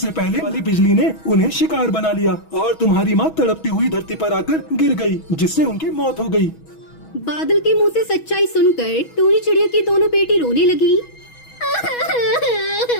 पहले वाली बिजली ने उन्हें शिकार बना लिया और तुम्हारी माँ तड़पती हुई धरती पर आकर गिर गई, जिससे उनकी मौत हो गई। बादल के मुंह से सच्चाई सुनकर टूनी चिड़िया की दोनों बेटी रोने लगी।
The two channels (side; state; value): right; late; 6.2 ms